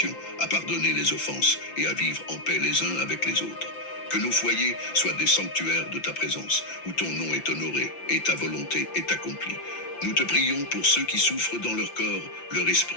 à pardonner les offenses et à vivre en paix les uns avec les autres. Que nos foyers soient des sanctuaires de ta présence, où ton nom est honoré et ta volonté est accomplie. Nous te prions pour ceux qui souffrent dans leur corps, leur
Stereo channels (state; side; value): late; right; 5.8 ms